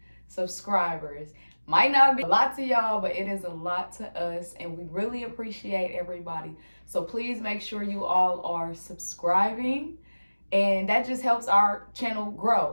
subscribers. Might not be a lot to y'all, but it is a lot to us, and we really appreciate everybody. So please make sure you all are subscribing, and that just helps our channel grow.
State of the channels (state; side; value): inverted; both; correlation -1.00